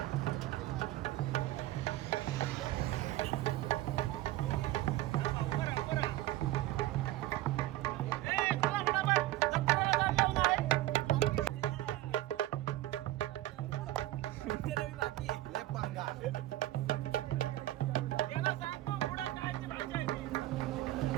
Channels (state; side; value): quieter; left; 15.7 dB